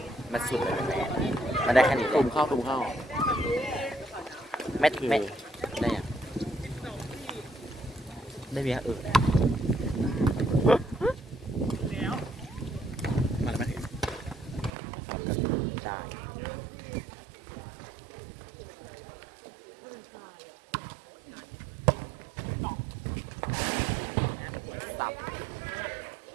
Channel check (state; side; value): drops out; left; at 14.7 s